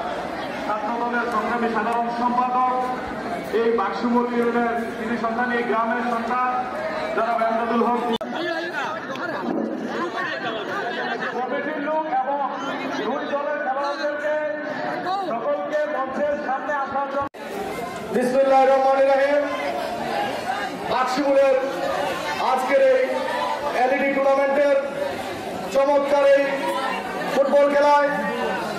ছাত্র দলের সংগ্রামী সাধারণ সম্পাদক, এই বাক্সমুল ইউনিয়নের কৃষি সন্তান, এই গ্রামের সন্তান যারা এমদাদুল হক কমিটির লোক এবং দুই দলের খেলোয়াড়দেরকে সকলকে মঞ্চের সামনে আসার জন্য। বিসমিল্লাহির রহমানির রহিম। বাক্সমুলের আজকের এই এলইডি টুর্নামেন্টের চমৎকার এই ফুটবল খেলায়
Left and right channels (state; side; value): identical; both; correlation 1.00